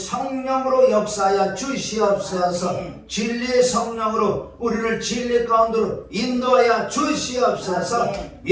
역사하여 주시옵소서. 진리의 성령으로 우리를 진리 가운데로 인도하여 주시옵소서.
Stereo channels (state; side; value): identical; both; correlation 1.00